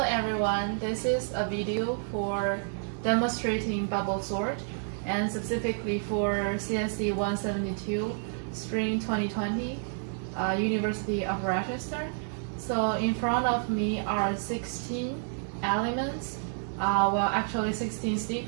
everyone, this is a video for demonstrating bubble sort and specifically for CSC172 Spring2020, University of Rochester. So in front of me are 16 elements, well actually 16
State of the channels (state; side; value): silent; left; digital silence